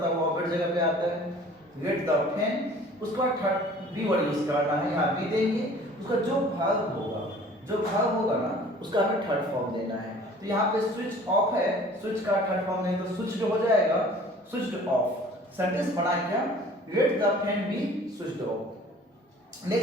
है वो ऑब्जेक्ट जगह पे आता है। Read the fan. उसके बाद थर्ड बी वर्ड यूज करना है, यहाँ बी देंगे। उसका जो भाग होगा ना, उसका हमें थर्ड फॉर्म देना है। तो यहाँ पे स्विच ऑफ है, स्विच का थर्ड फॉर्म नहीं, तो स्विच जो हो जाएगा स्विच्ड ऑफ। सेंटेंस बना क्या? Let the fan B switched off.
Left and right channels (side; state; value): both; normal; correlation 0.49